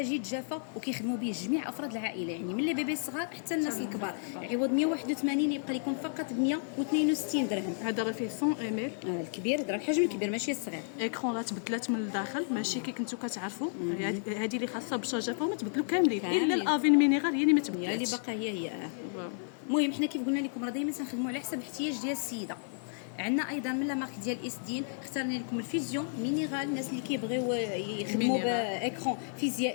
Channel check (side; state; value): right; silent; 56 dB below the other